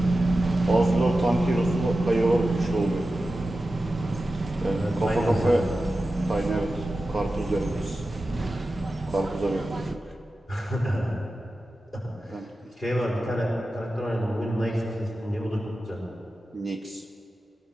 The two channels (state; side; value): normal; both; correlation 0.93